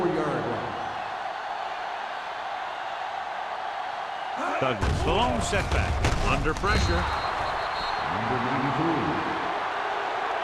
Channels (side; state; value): both; identical; correlation 1.00